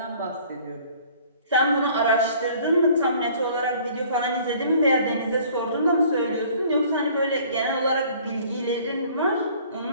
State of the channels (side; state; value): both; inverted; correlation -0.54